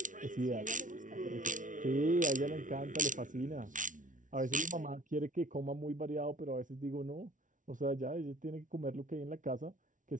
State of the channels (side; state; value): left; late; 0.38 ms